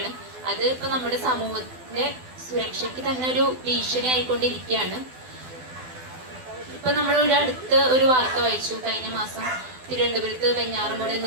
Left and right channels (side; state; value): left; late; 12 ms